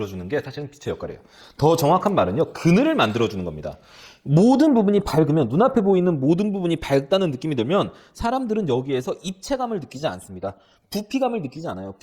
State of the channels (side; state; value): both; identical; correlation 1.00